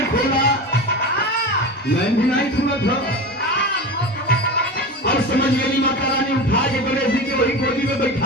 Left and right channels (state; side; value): normal; both; correlation 0.27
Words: खोला, नैन भी नहीं खुला था। और समझ गई माता रानी उठा के गणेश जी के वही गोदी में